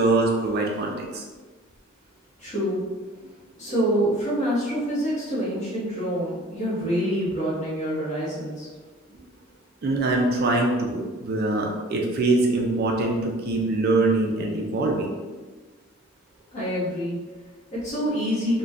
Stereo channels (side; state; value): both; normal; correlation 0.48